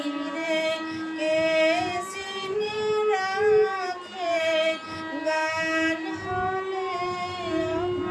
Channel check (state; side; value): identical; both; correlation 1.00